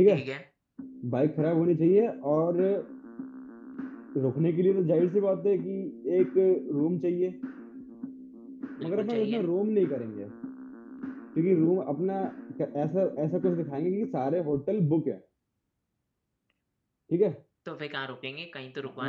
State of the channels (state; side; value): identical; both; correlation 1.00